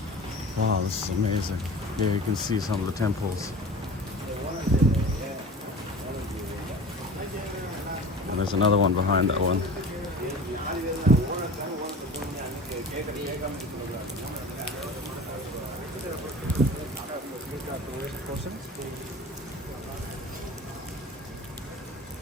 Wow, this is amazing. Here you can see some of the temples. And there's another one behind that one.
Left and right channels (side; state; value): both; normal; correlation 0.37